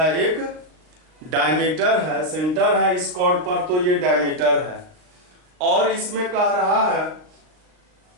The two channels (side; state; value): left; late; 38 ms